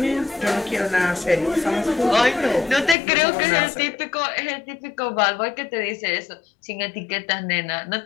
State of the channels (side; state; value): right; drops out; at 3.0 s